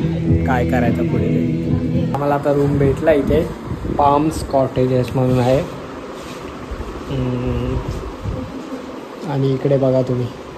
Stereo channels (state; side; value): identical; both; correlation 1.00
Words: काय करायचं पुढे. आम्हाला आता रूम भेटला इथे. पाम्स कॉटेजेस म्हणून आहे. आणि इकडे बघा तुम्ही,